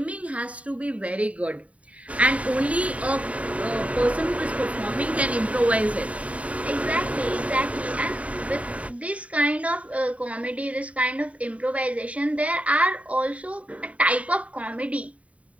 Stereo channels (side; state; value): left; late; 0.067 ms